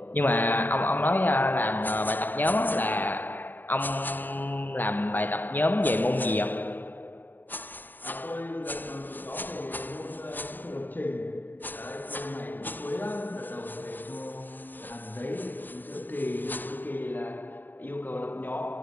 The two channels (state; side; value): late; right; 0.090 ms